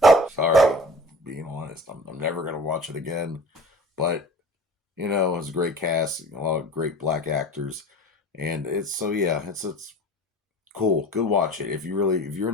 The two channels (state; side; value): normal; both; correlation 0.41